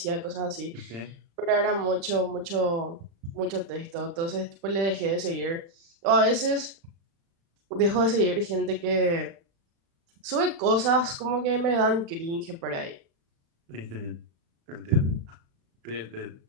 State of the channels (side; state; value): left; late; 35 ms